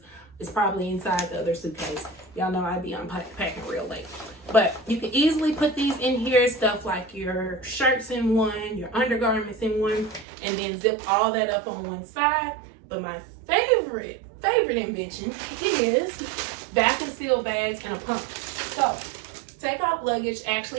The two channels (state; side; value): drops out; left; at 10.2 s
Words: It's probably inside the other suitcase. Y'all know I be unpacking real late. But you can easily put these in here, stuff like your shirts in one, your undergarments in one, and then zip all that up on one side. But my favorite invention is vacuum seal bags and a pump. So Take Off Luggage